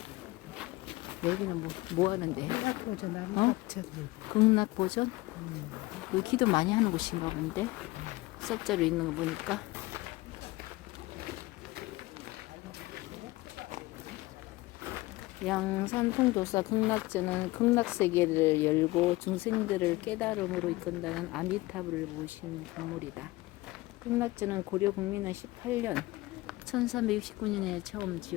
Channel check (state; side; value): quieter; right; 20.2 dB